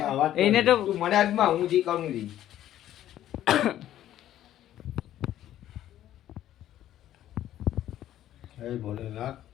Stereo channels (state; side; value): quieter; right; 12.4 dB